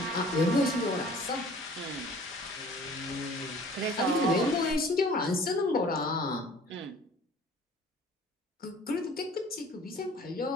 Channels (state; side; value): normal; both; correlation 0.49